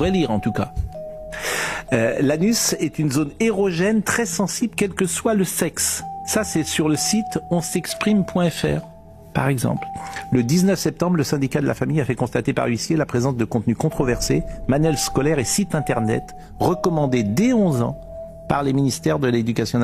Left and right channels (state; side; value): identical; both; correlation 1.00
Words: lire en tout cas. L'anus est une zone érogène très sensible quel que soit le sexe. Ça, c'est sur le site onsexprime.fr, par exemple. Le 19 septembre, le syndicat de la famille a fait constater par huissier la présence de contenus controversés, manuels scolaires et sites internet recommandés dès 11 ans par les ministères de l'Éducation